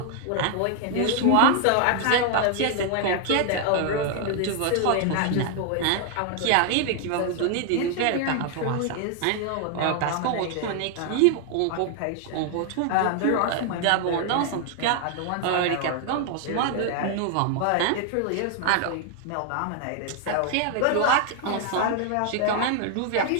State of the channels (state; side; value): different; both; correlation 0.00